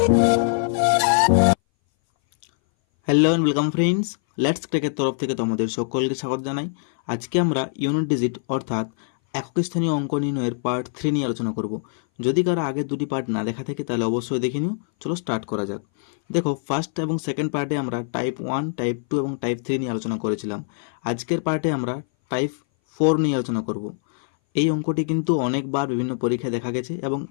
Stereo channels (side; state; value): right; silent; 60 dB below the other